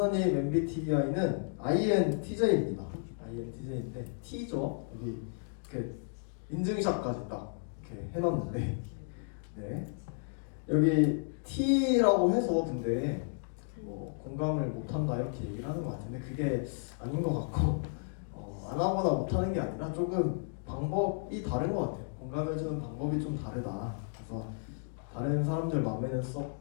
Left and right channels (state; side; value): silent; right; digital silence